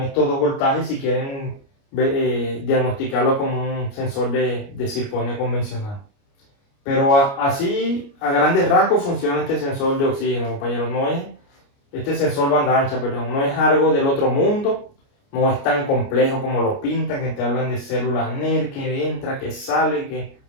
dos voltajes si quieren diagnosticarlo como un sensor de circonio convencional. Pero así, a grandes rasgos, funciona este sensor de oxígeno, compañeros. No es este sensor banda ancha, perdón, no es algo del otro mundo, no es tan complejo como lo pintan, que te hablan de células NER, que entra, que sale, que...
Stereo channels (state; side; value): late; right; 29 ms